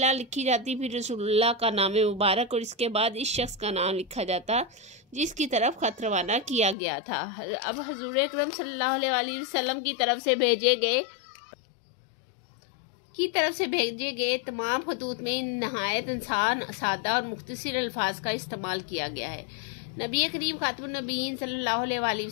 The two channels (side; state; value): right; drops out; at 6.8 s